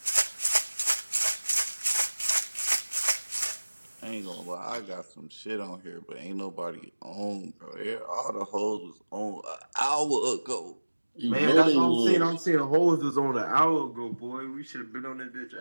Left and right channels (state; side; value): inverted; both; correlation -1.00